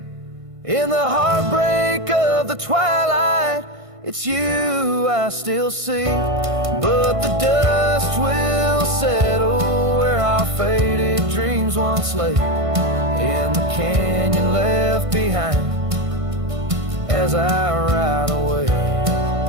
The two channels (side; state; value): left; late; 1.5 ms